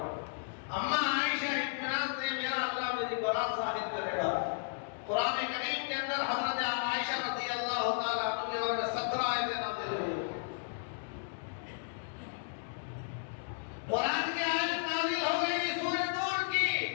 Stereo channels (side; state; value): right; silent; digital silence